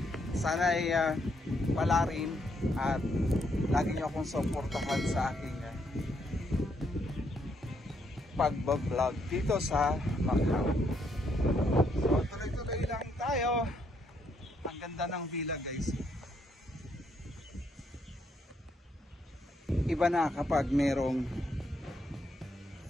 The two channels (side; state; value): both; normal; correlation 0.74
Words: Sana'y palarin at lagi nyo akong suportahan sa aking pagbablog dito sa Macau. So tuloy-tuloy lang tayo. Ang ganda ng villa guys. Iba na kapag merong